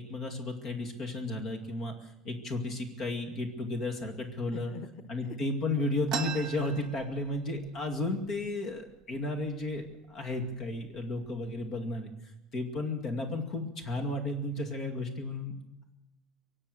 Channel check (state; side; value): normal; both; correlation 0.42